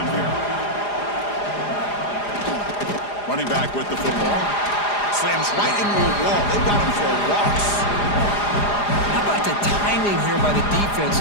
here. Running back with the football. Slams right into a wall. They've got him for a loss. How about the timing here by the defense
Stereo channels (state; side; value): late; right; 4.9 ms